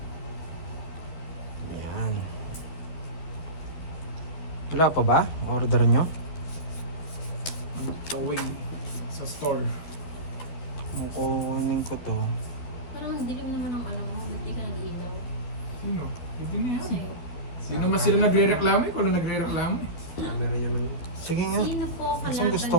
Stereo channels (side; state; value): right; late; 12 ms